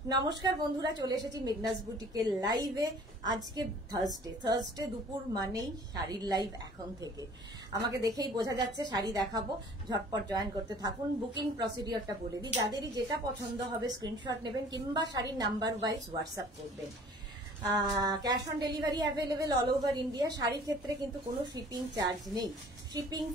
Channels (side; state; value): both; normal; correlation 0.51